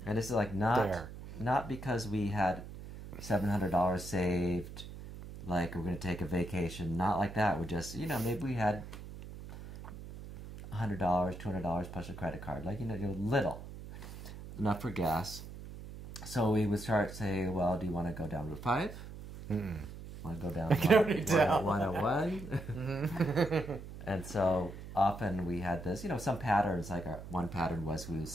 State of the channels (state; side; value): noise; right; hum, 12 dB below the sound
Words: And this is like not because we had $700 saved, like we're going to take a vacation. Not like that. We're just, maybe we had $100, $200 plus a credit card. Like, little. Enough for gas. So we would start saying, well, do you want to go down Route 5? Want to go down 101? And so often we had this, some patterns. Like one pattern was we would